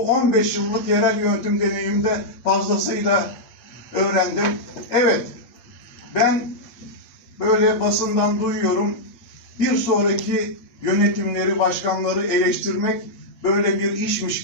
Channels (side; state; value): right; late; 8.2 ms